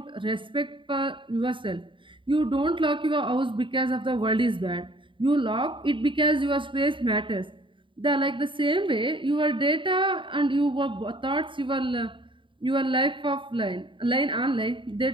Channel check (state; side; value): late; left; 0.24 ms